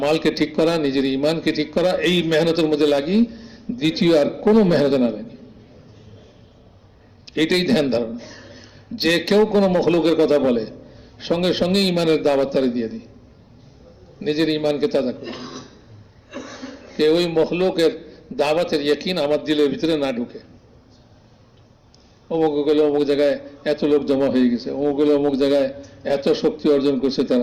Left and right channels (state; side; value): identical; both; correlation 1.00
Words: ঠিক করা, নিজের ইমানকে ঠিক করা, এই মেহনতের মধ্যে লাগি, দ্বিতীয় আর কোনো মেহনত না লাগি। এটাই ধ্যান ধারণা। যে কেউ কোনো মখলুকের কথা বলে, সঙ্গে সঙ্গে ইমানের দাওয়াত তারে দিয়ে দিই, নিজের ইমানকে তাজা করি। কেউ ওই মখলুকের দাওয়াতের ইয়াকিন আমার দিলের ভিতরে না ঢুকে। অমুক গেলে অমুক জায়গায় এত লোক জমা হয়ে গেছে, অমুক গেলে অমুক জায়গায় এত শক্তি অর্জন করছে